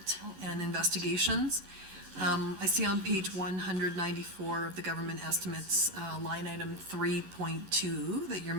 and investigations. I see on page 194 of the government estimates, line item 3.2, that your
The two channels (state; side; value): late; left; 11 ms